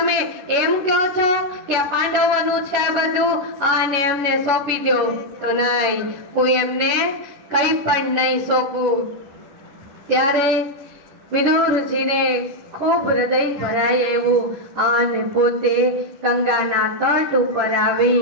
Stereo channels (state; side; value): late; left; 10 ms